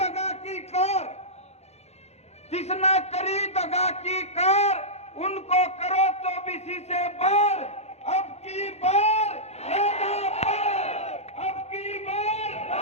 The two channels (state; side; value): late; right; 0.31 ms